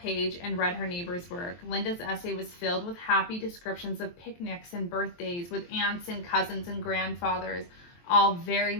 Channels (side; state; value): right; late; 23 ms